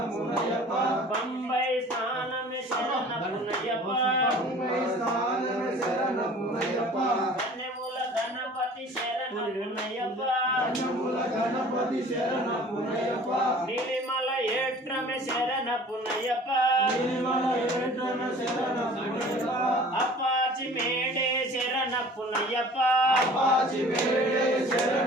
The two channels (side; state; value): both; normal; correlation 0.47